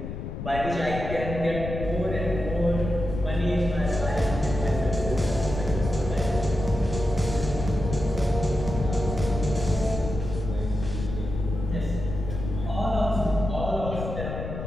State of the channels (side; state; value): left; noise; rumble, 6 dB below the sound